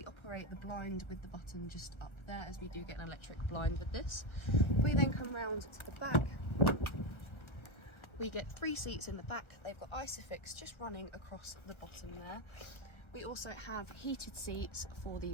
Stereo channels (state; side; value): late; right; 1.3 ms